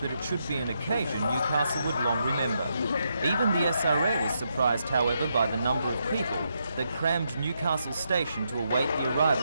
it should be an occasion Newcastle would long remember. Even the SRA was surprised, however, by the number of people that crammed Newcastle station to await the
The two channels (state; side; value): inverted; both; correlation -0.80